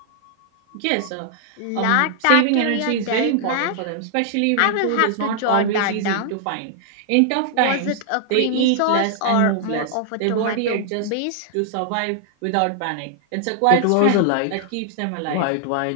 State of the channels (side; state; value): both; different; correlation -0.01